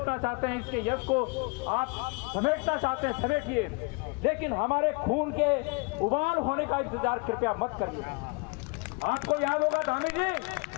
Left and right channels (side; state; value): right; quieter; 30.8 dB